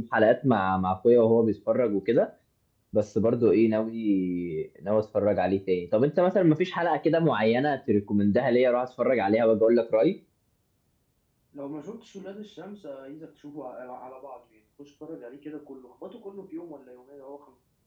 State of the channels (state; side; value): identical; both; correlation 1.00